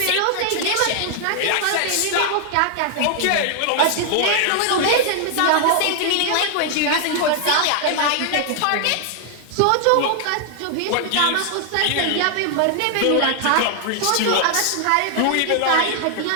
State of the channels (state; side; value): different; both; correlation 0.00